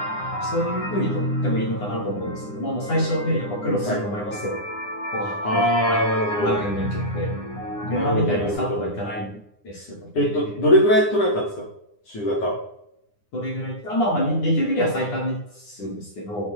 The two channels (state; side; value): late; right; 9.8 ms